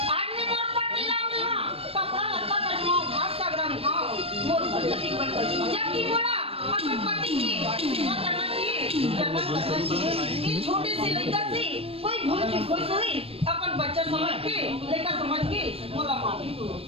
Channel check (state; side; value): late; left; 0.28 ms